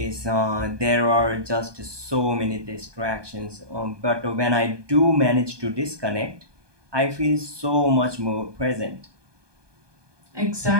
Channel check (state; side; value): late; left; 1.2 ms